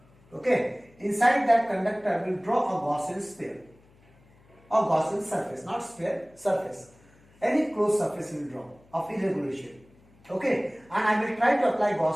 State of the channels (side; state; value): left; noise; hum, 29 dB below the sound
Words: Okay. Inside that conductor we will draw a Gaussian sphere. A Gaussian surface, not sphere, surface. Any closed surface we will draw of irregular shape. Okay, and I will try to apply